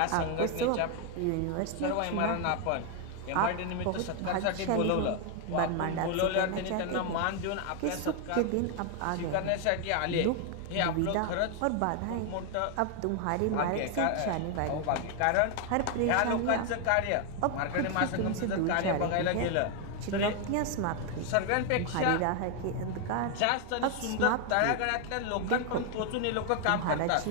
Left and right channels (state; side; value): different; both; correlation 0.01